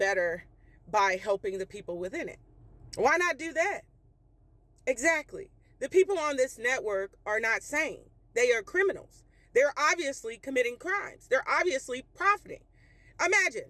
by helping the people within it. Why not do that? Exactly. The people on this network are not sane. They are criminals. They're obviously committing crimes. They're obviously profiting.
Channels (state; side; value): identical; both; correlation 1.00